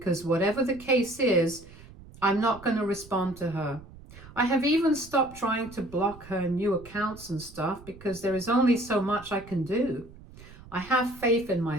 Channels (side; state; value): right; noise; rumble, 19 dB below the sound